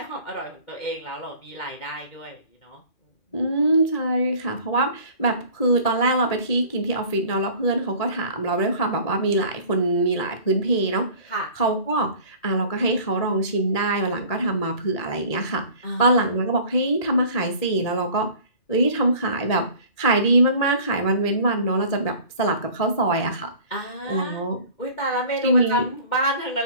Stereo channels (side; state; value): right; late; 2.4 ms